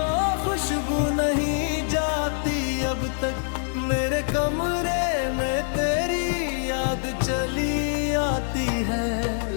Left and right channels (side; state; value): right; silent; 62 dB below the other